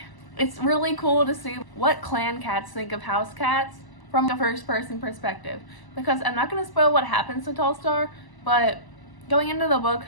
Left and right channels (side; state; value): right; late; 1.0 ms